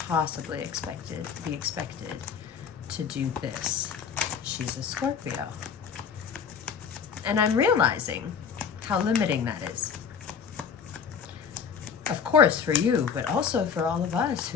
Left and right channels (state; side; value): quieter; right; 6.8 dB